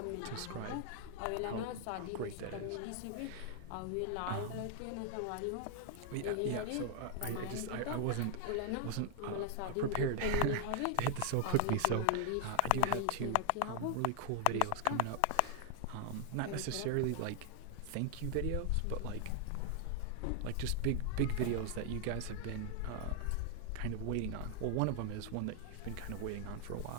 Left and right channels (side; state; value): both; different; correlation 0.00